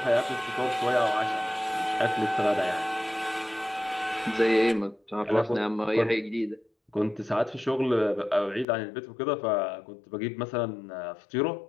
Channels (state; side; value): drops out; right; at 8.7 s